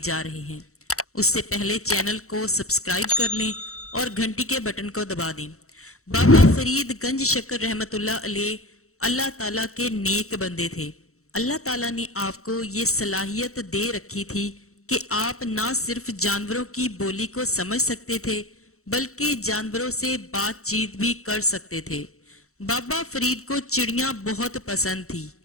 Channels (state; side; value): late; right; 0.64 ms